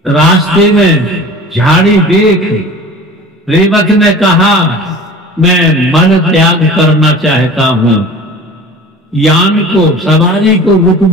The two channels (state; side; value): normal; both; correlation 0.40